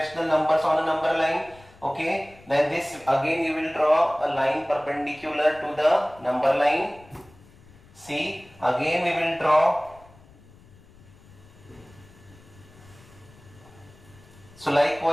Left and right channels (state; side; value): noise; left; rumble, 25 dB below the sound